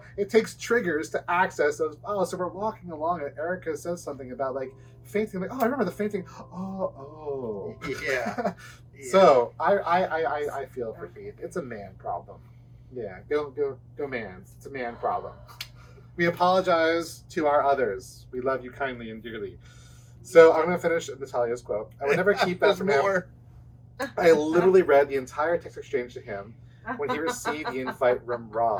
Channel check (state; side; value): identical; both; correlation 1.00